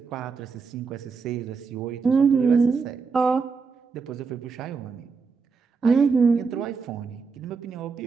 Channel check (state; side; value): quieter; left; 5.1 dB